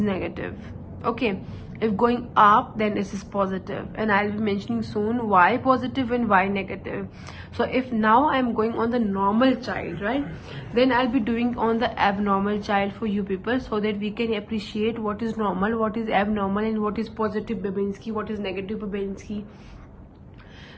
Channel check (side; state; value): both; identical; correlation 1.00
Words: Okay, if going up, then this is positive, and I'll be mentioning soon why positive and why negative. So if now I'm going on the normal child, right, then I'll be doing on the abnormal child for you people, so that we can appreciate what is normal, what is abnormal, and what is positive Babinski, what is negative Babinski.